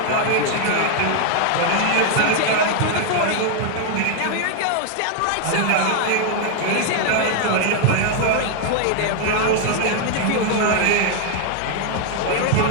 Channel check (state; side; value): different; both; correlation 0.00